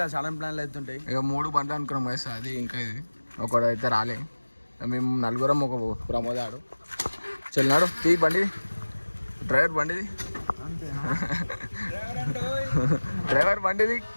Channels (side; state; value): both; inverted; correlation -1.00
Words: సడన్ ప్లాన్లు అవుతుంటాయి ఇక 3 బండ్లు అనుకున్నాం guys అది ఇంకా ఇది ఒకడైతే రాలే మేము నలుగురం ఒక ప్రమోదాడు చెల్లినాడు తీ బండి డ్రైవర్ బండిది డ్రైవర్ బండిది